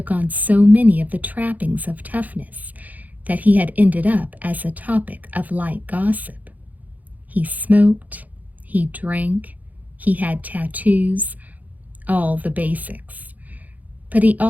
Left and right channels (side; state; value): left; late; 0.079 ms